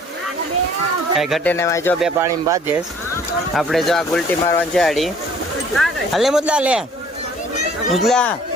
કઈ ઘટે ને જો બે પાણી બાંધે. આપણે જો આ ગુલટી મારવાની છે આડી. હલે મુદલા લે મુદલા.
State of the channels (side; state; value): both; normal; correlation 0.55